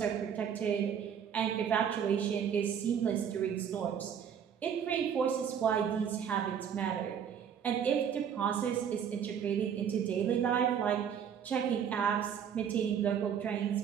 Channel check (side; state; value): left; quieter; 8.1 dB